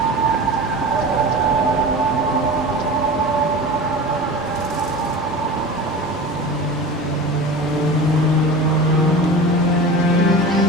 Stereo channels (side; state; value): both; normal; correlation 0.33